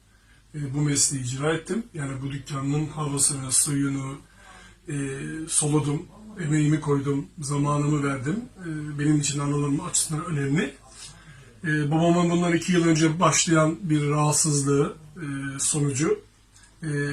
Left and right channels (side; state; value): both; identical; correlation 1.00